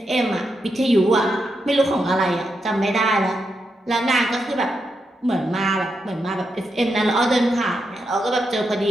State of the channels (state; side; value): normal; both; correlation 0.84